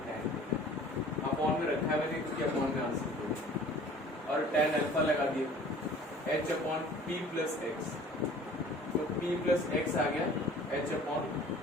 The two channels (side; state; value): both; normal; correlation 0.48